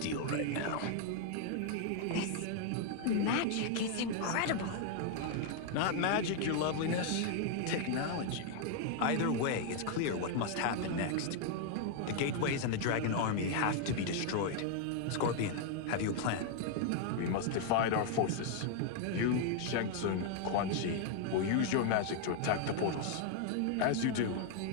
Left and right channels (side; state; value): both; different; correlation 0.00